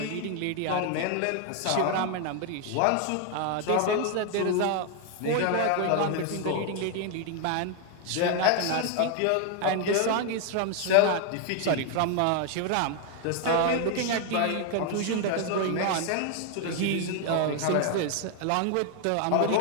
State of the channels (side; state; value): both; different; correlation 0.00